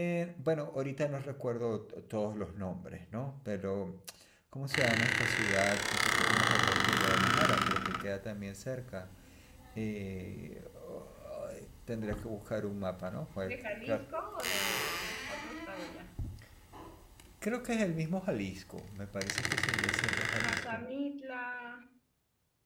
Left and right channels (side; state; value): both; identical; correlation 1.00